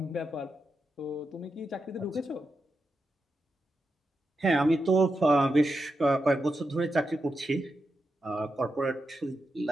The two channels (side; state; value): both; normal; correlation 0.87